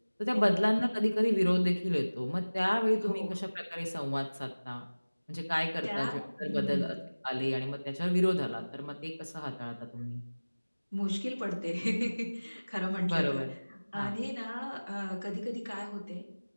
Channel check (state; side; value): inverted; both; correlation -1.00